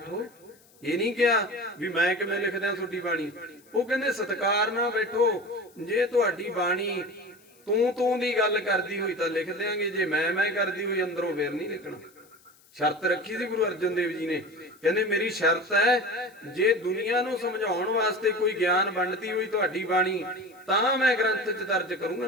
ਇਹ ਨਹੀਂ ਕਿਹਾ ਵੀ ਮੈਂ ਕਿਵੇਂ ਲਿਖਦਾ ਤੁਹਾਡੀ ਬਾਣੀ। ਉਹ ਕਹਿੰਦੇ ਸਤਿਕਾਰ ਨਾਲ ਬੈਠੋ, ਜੇ ਤੁਹਾਡੀ ਬਾਣੀ ਤੂੰ ਦੀ ਗੱਲ ਕਰਦੀ ਹੋਈ ਤਾਂ ਲਿਖ ਦਿਆਂਗੇ, ਜੇ ਮੈਂ ਕਰਦੀ ਹੋਈ ਅੰਦਰੋਂ ਫੇਰ ਨਹੀਂ ਲਿਖਣਾ। ਸ਼ਰਤ ਰੱਖੀ ਸੀ ਗੁਰੂ ਅਰਜਨ ਦੇਵ ਜੀ ਨੇ, ਕਹਿੰਦੇ ਮੇਰੀ ਸ਼ਰਤ ਹੈ ਜੇ ਦੁਨੀਆ ਨੂੰ ਸਮਝਾਉਣ ਵਾਸਤੇ ਕੋਈ ਗਿਆਨ ਵੰਡਦੀ ਹੋਈ ਤੁਹਾਡੀ ਬਾਣੀ ਤਾਂ ਮੈਂ ਗ੍ਰੰਥ 'ਚ ਦਰਜ ਕਰੂੰਗਾ,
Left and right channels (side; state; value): left; noise; hiss, 29 dB below the sound